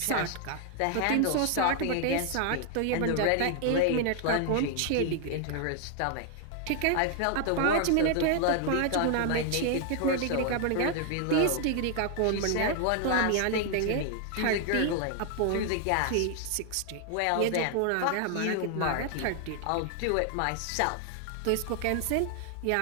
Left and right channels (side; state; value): both; different; correlation 0.00